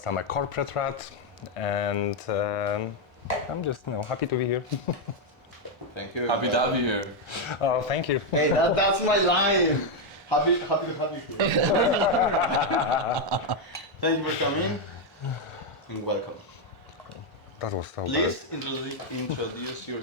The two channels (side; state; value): both; normal; correlation 0.02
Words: I'm a corporate rat, and I'm just happy to be here. Thank you. Happy to have you here. Oh, thank you. Hey, that's my line. Happy to have you here. Thank you for coming and welcome. That was so Please introduce